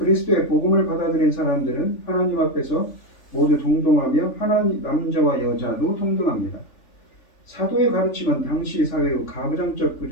복음을 받아들인 사람들은 하나님 앞에서 모두 동등하며 하나님 남자와 여자도 동등합니다. 사도의 가르침은 당시 사회의 가부장적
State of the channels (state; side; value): late; right; 3.4 ms